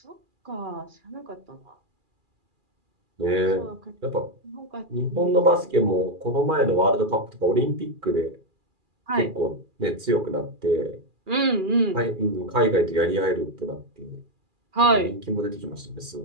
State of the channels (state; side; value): late; left; 2.4 ms